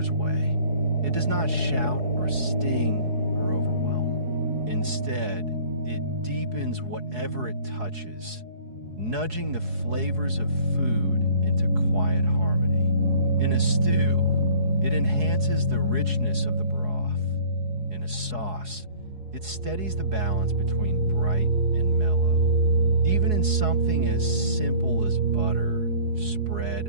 way. It does not shout or sting or overwhelm. Instead, it deepens whatever it touches, nudging the flavors of food into quiet harmony. In a stew, it enhances the richness of the broth. In a sauce, it steadies the balance between bright and mellow. Even in something as simple as butter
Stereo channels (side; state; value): left; late; 4.7 ms